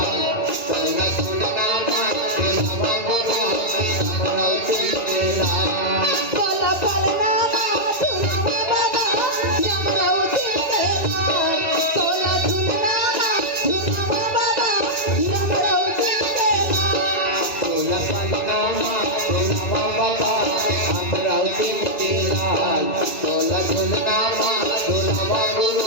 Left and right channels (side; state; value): right; late; 2.4 ms